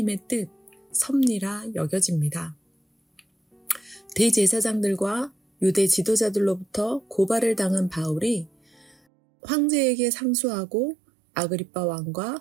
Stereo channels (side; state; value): left; drops out; at 9.0 s